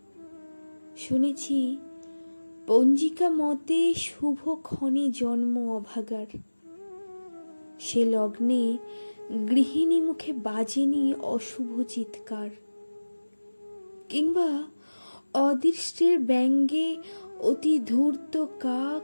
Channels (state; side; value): inverted; both; correlation -1.00